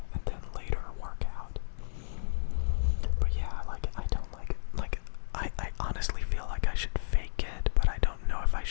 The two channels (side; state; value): right; silent; 57 dB below the other